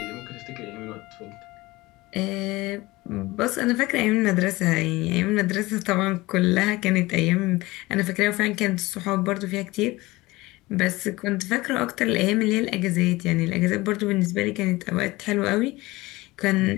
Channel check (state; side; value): quieter; right; 20.5 dB